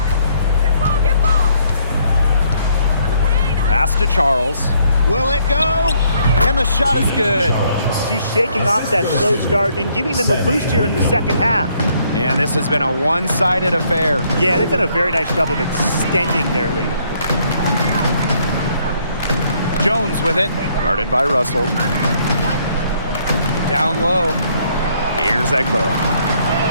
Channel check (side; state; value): both; inverted; correlation -0.68